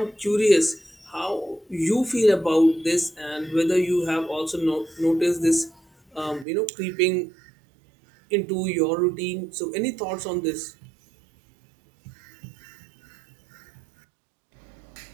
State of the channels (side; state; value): left; drops out; at 6.5 s